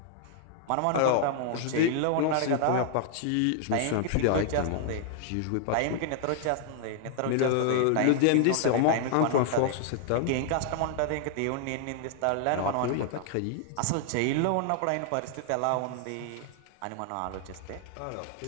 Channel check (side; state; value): both; different; correlation 0.00